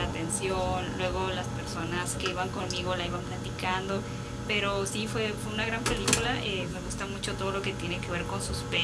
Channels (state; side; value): identical; both; correlation 1.00